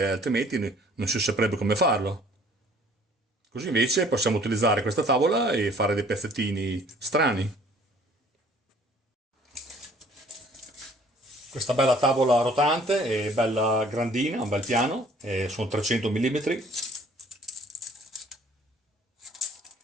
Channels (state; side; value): normal; both; correlation 0.55